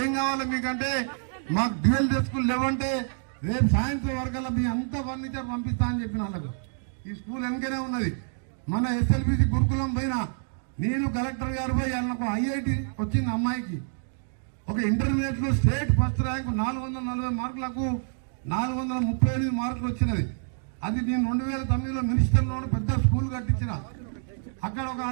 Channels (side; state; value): left; silent; digital silence